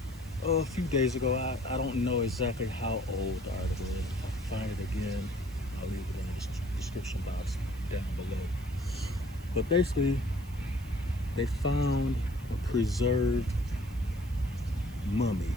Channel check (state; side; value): noise; right; hiss, 23 dB below the sound